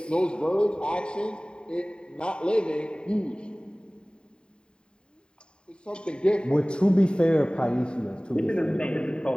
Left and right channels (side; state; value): right; late; 0.050 ms